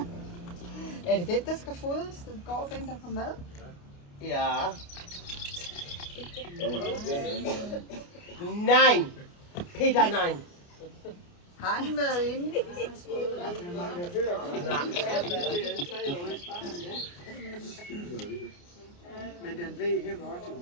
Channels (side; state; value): right; late; 29 ms